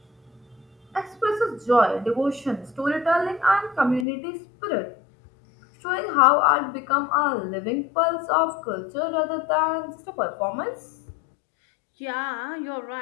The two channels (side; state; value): right; drops out; at 4.0 s